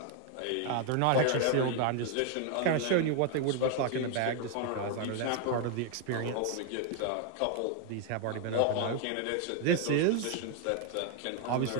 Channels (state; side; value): different; both; correlation 0.01